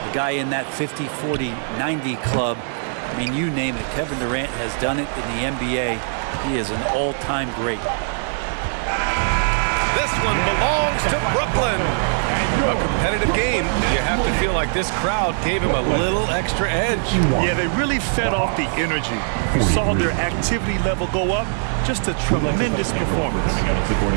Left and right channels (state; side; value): silent; left; digital silence